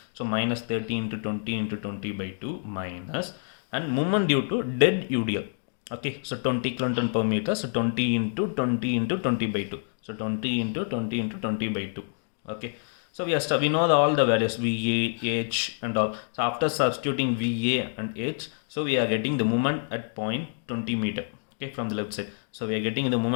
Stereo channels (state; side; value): silent; right; digital silence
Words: So minus 30 into 20 into 20 by 2 minus, and movement due to dead UDL. Okay, so 20 kilonewton per meter. So 20 into 20 into 20 by 2. So 20 into 20 into 20 by 2. Okay. So we know all the values VA, H and all. So after substituting VA and H, so we are getting the moment at point 20 meter. Okay, from the left side. So we are getting the